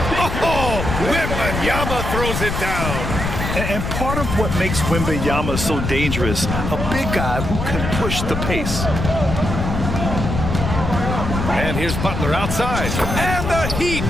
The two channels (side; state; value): left; noise; rumble, 3 dB below the sound